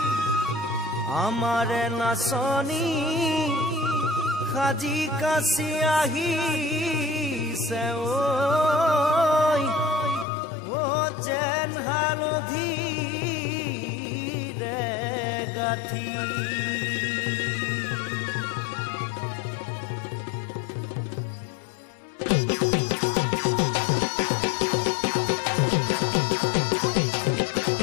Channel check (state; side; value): drops out; right; at 10.2 s